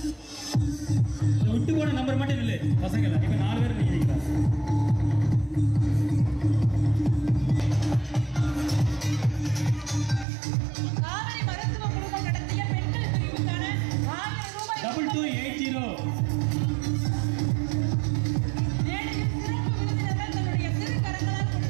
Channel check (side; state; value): left; drops out; at 10.2 s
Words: விட்டு போன நம்பர் மட்டும் இல்லை பசங்க இப்ப 4 பேர் நிக்கிறீங்களா? காவிரி மருத்துவ குழுமம் நடத்திய பெண்கள் பிரிவுக்கான 1000 ரூபாய் 2280 மேடையில் சிறப்பு விருந்தினர்கள் தன்னுடைய திருக்கரங்களால்